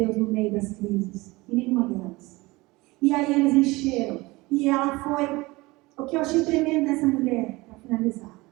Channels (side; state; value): left; quieter; 22.0 dB